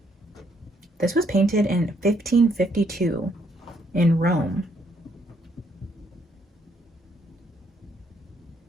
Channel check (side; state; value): both; normal; correlation 0.70